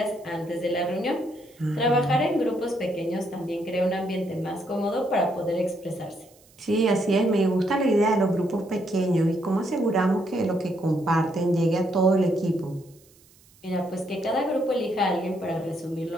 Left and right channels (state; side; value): noise; right; hiss, 29 dB below the sound